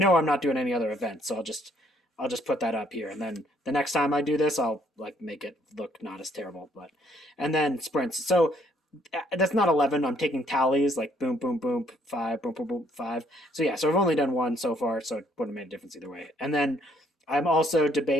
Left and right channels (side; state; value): both; normal; correlation 0.66